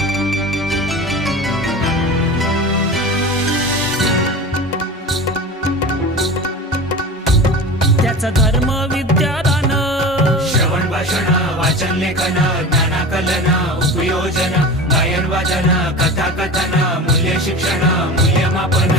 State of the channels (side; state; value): both; normal; correlation 0.32